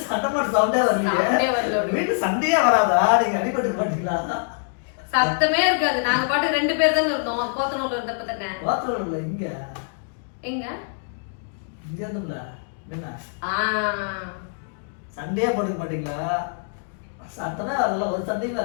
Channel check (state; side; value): silent; right; digital silence